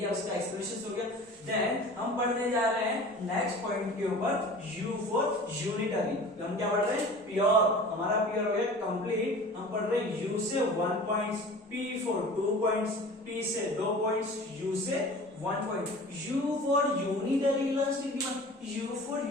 उसका एक्सप्रेशन हो गया। देन हम पढ़ने जा रहे हैं नेक्स्ट पॉइंट के ऊपर, U फॉर यूनिटरी। हम क्या पढ़ रहे हैं? प्योर, हमारा प्योर हो गया कंप्लीट। हम पढ़ रहे हैं U से 1 points, P for 2 points, P से 2 पॉइंट्स, U से 1 point. U for unitary elastic demand, U for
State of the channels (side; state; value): both; normal; correlation 0.40